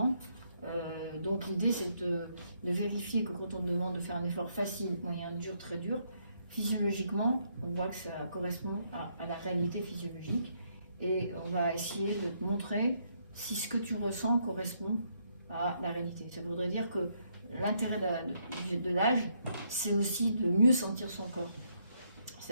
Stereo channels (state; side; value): inverted; both; correlation -0.74